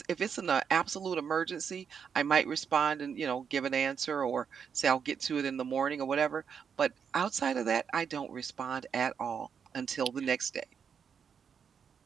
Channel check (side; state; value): left; quieter; 7.0 dB